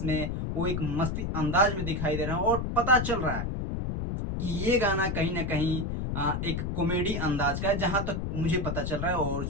वो एक मस्ती अंदाज में दिखाई दे रहा है, और पता चल रहा है कि ये गाना कहीं ना कहीं एक कॉमेडी अंदाज का है, जहां तक मुझे पता चल रहा है, और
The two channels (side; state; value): left; noise; rumble, 2 dB below the sound